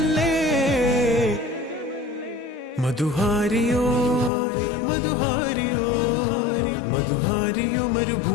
മധുഹാരിയോ മധുഹാരിയോ മധുഹാരിയോ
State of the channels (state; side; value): drops out; right; at 4.3 s